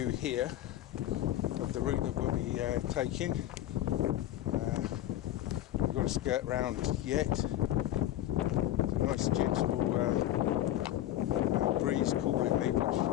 here of the route that we'll be taking. We've got to skirt round yet. It's a nice gentle breeze cooling me, which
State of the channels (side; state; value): right; quieter; 13.3 dB